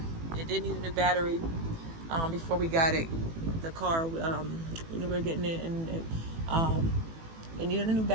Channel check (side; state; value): left; late; 18 ms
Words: did need a new battery before we got it. The car, we were getting it, and it needed a new